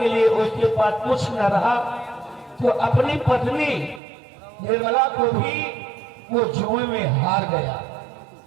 लिए उसके पास कुछ न रहा तो अपनी पत्नी निर्मला को भी वो जुए में हार गया।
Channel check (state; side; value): drops out; left; at 4.0 s